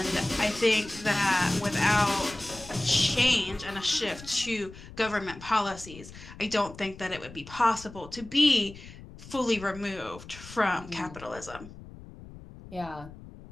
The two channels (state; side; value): noise; left; rumble, 17 dB below the sound